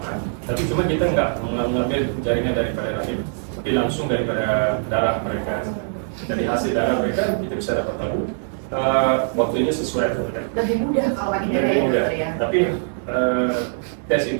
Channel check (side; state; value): left; silent; 64 dB below the other